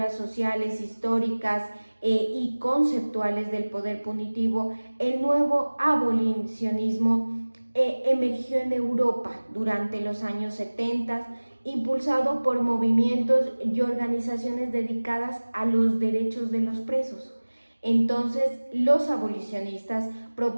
sociales, históricas y conceptuales del poder punitivo. El nuevo abolicionismo emergió en Europa durante los años 70, impulsado por movimientos y organizaciones dedicadas a los derechos de los presos. Entonces, los abolicionistas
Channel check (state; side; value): inverted; both; correlation -1.00